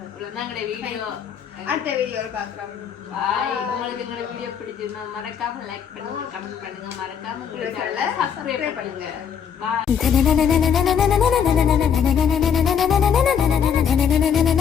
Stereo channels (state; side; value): quieter; right; 7.7 dB